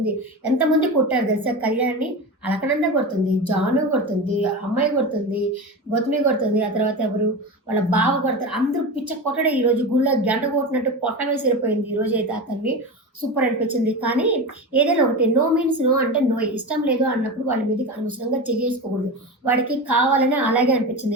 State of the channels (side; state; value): both; normal; correlation 0.24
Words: ఎంతమంది కొట్టారు తెలుసా కళ్యాణ్‌ని? అలకనంద కొడుతుంది, జాను కొడుతుంది, అమ్మాయి కొడుతుంది, గౌతమి కొడుతుంది. ఆ తర్వాత ఎవరు? వాళ్ళ బావ కొడతారు. అందరూ పిచ్చ కొట్టడే ఈరోజు గుళ్ళో గంట కొట్టినట్టు కొట్టమే సరిపోయింది ఈరోజైతే అతన్ని. సూపర్ అనిపించింది. కానీ ఏదైనా ఒకటి నో మీన్స్ నో అంటే నో. ఇష్టం లేదు అన్నప్పుడు వాళ్ళ మీదకి అనవసరంగా చెయ్యేసుకోకూడదు. వాడికి కావాలని అలాగే